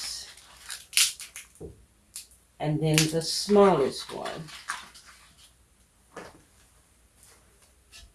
And then the smallest one.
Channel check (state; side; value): identical; both; correlation 1.00